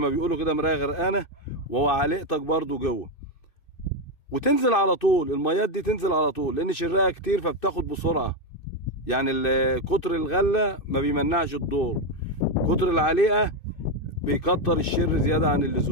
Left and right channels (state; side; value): late; right; 2.6 ms